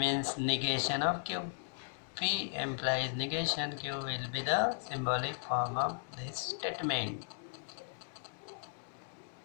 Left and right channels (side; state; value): right; silent; digital silence